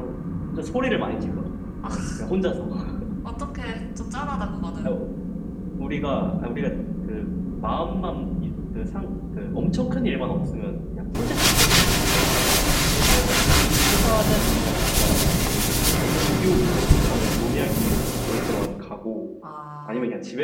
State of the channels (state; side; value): identical; both; correlation 1.00